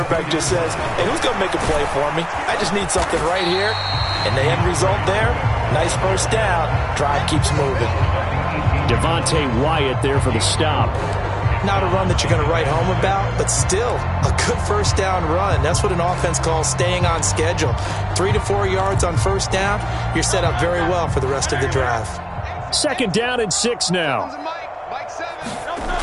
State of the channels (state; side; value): identical; both; correlation 1.00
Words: just says, hey, who's going to make a play for me? I just need something right here. And the end result there, nice first down. Drive keeps moving. Devontae Wyatt there for the stop. Not a run that you're going to write home about, but still a good first down run. That's what an offense calls staying on schedule. 3 to 4 yards on first down, you're set up very well for the rest of the drive. 2nd down and 6 now.